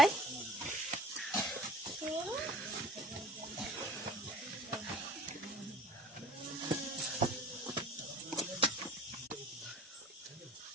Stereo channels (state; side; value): normal; both; correlation 0.44